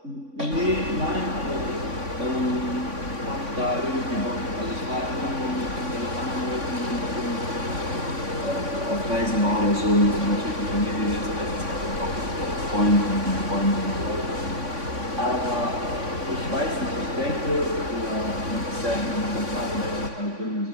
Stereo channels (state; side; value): late; left; 3.5 ms